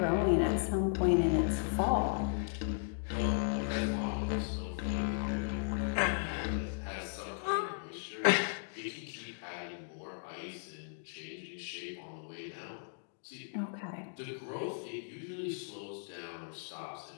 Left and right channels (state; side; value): silent; right; digital silence